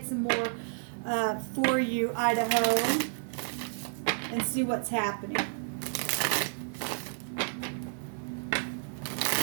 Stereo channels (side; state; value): left; silent; digital silence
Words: some more for you, Idaho, and see what's happening.